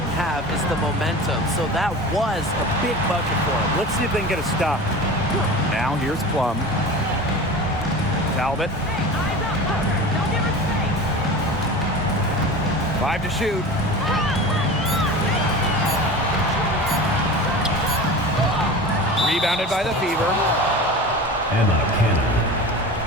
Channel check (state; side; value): normal; both; correlation 0.33